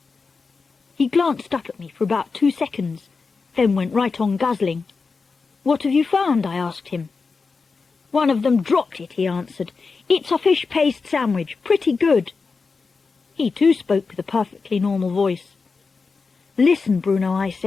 He glanced up at me for about 2 seconds, then went right on guzzling. What have you found? I asked him. One of them dropped it, he answered. It's a fish paste sandwich, pretty good. He too spoke with a perfectly normal voice. Listen, Bruno, I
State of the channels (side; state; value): right; quieter; 4.6 dB